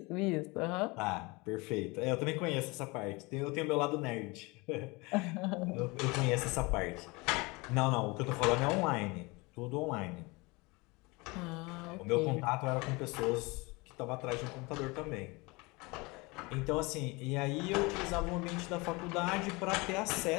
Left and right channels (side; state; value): right; quieter; 25.4 dB